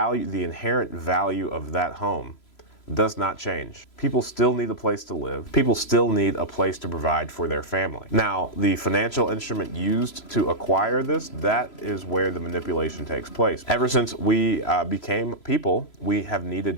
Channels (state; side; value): late; right; 3.0 ms